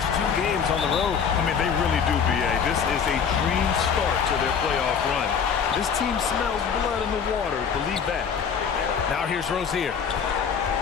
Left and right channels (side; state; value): right; quieter; 6.8 dB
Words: 2 games on the road. I mean, they really do, B.A. This is a dream start to their playoff run. This team smells blood in the water, believe that. Now here's Rozier.